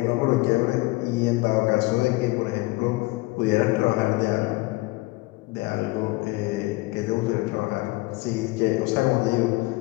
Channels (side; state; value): right; quieter; 22.0 dB